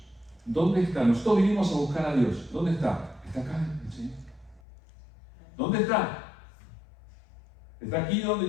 ¿dónde está? Nosotros vinimos a buscar a Dios. ¿Dónde está? Está acá, ¿sí? ¿Dónde está? ¿Está aquí donde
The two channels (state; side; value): drops out; right; at 4.6 s